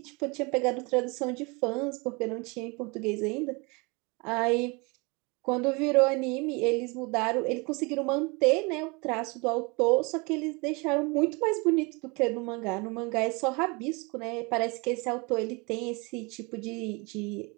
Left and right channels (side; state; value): left; quieter; 28.4 dB